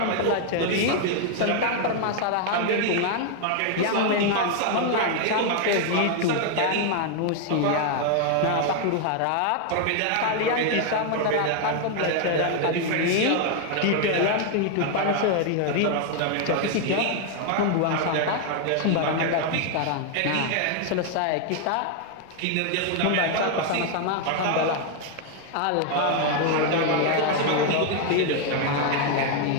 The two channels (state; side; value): different; both; correlation 0.00